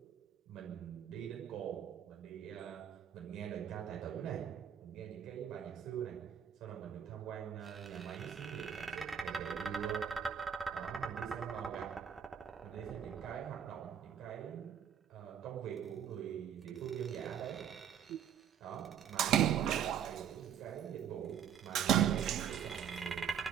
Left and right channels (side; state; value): left; quieter; 8.8 dB